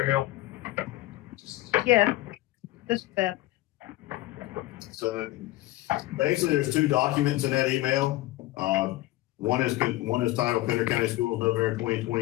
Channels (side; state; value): right; quieter; 17.7 dB